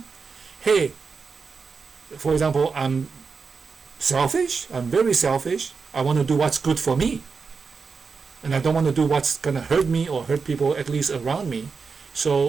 hey, for example, I'm selfish. I'm very selfish. I want to do what's good for me. And I don't want to do what's going to hurt me or hurt people at least around me.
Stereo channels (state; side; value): quieter; left; 5.1 dB